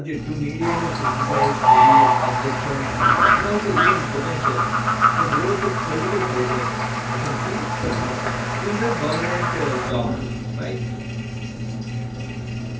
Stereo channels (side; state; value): both; identical; correlation 1.00